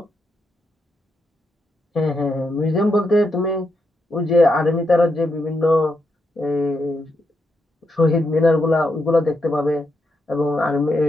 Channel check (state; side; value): normal; both; correlation 0.82